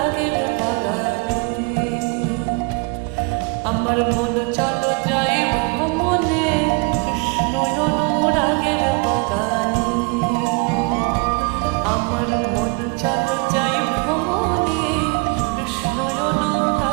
বাগানে। আমার মন চলো যাই ভ্রমণে কৃষ্ণ অনুরাগ রাগের বাগানে আমার মন চলো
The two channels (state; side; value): quieter; left; 31.1 dB